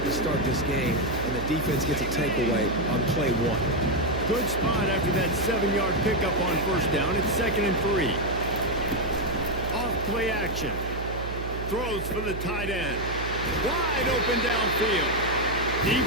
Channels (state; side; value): noise; right; hum, 7 dB below the sound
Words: to start this game, and the defense gets a takeaway on play one. Good spot after that 7-yard pickup on first down. It's 2nd and 3. Off play action. Throws for the tight end. Wide open downfield.